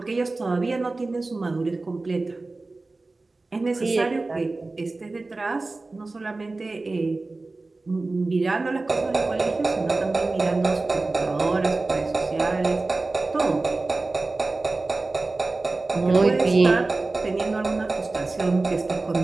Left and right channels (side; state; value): left; quieter; 3.3 dB